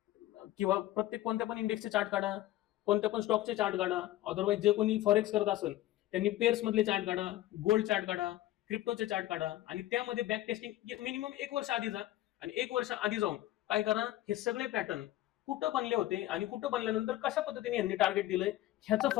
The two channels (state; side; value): quieter; right; 15.1 dB